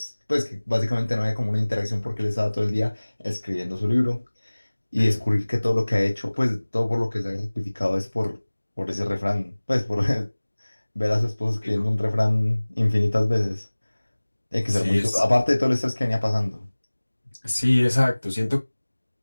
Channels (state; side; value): inverted; both; correlation -1.00